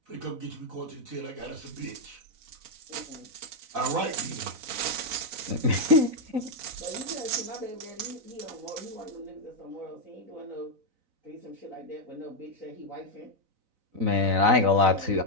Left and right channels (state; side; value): late; left; 4.0 ms